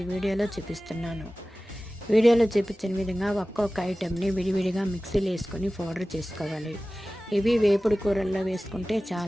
వీడియోలో చూపిస్తున్నాను. వీడియోలో చూపించిన విధంగా ఒక్కొక్క ఐటెంని విడివిడిగా మిక్సీలో వేసుకొని పౌడర్ చేసుకోవాలి. ఇవి వేపుడు కూరల్లో వేసుకుంటే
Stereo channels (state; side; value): normal; both; correlation 0.97